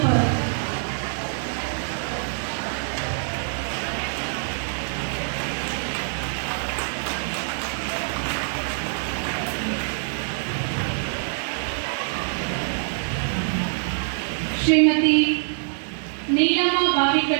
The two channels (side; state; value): left; silent; 62 dB below the other